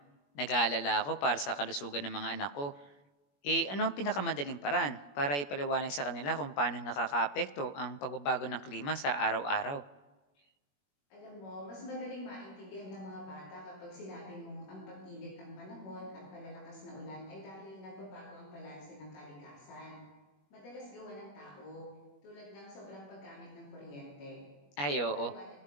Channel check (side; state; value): right; late; 21 ms